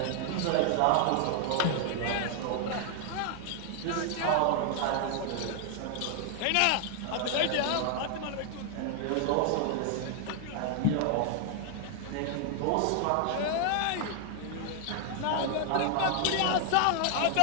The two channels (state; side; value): different; both; correlation 0.00